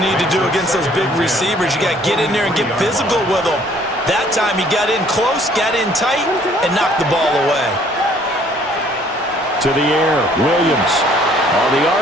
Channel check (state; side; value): normal; both; correlation 0.60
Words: need to do against those big receivers. You got to get in there and get physical with them. That time he got in close, got in tight, and knocked the ball away. To the air, Williams. On the